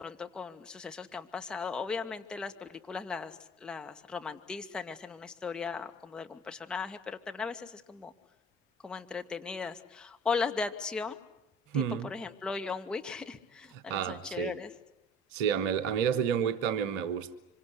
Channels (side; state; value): both; normal; correlation 0.42